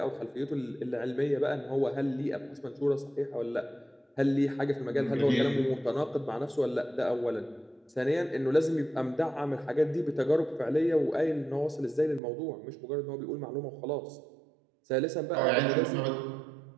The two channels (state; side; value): drops out; left; at 12.2 s